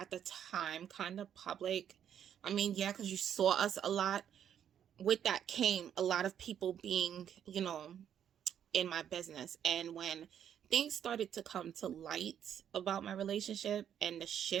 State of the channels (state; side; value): quieter; left; 9.3 dB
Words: the time kind of public, I mean, yeah, because you saw us a lot. With that came a lot of people being, in my business. And when things started to come to light about my relationship and the